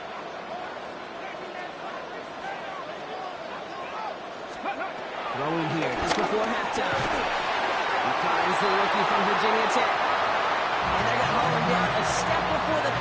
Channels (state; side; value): identical; both; correlation 1.00